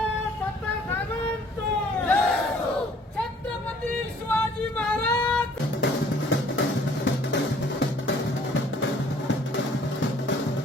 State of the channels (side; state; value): both; normal; correlation 0.57